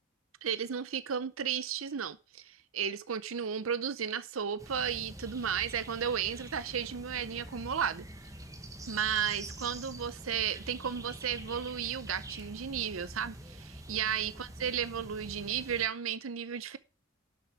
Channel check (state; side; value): quieter; left; 7.1 dB